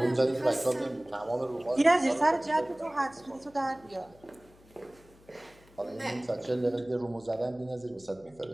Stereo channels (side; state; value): left; noise; hum, 27 dB below the sound